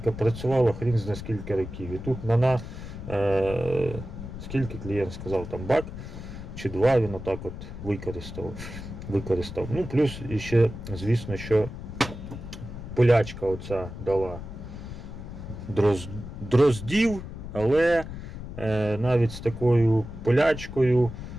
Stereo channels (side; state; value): left; noise; rumble, 10 dB below the sound